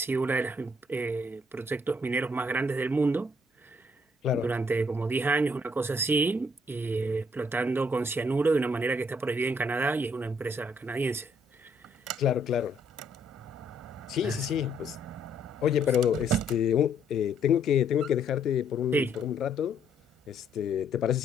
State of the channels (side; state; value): both; normal; correlation 0.68